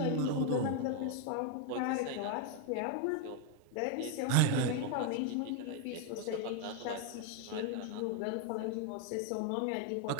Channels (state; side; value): different; both; correlation 0.01